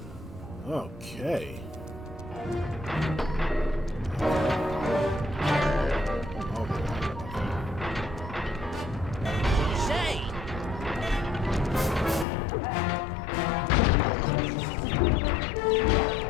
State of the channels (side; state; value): right; drops out; at 12.2 s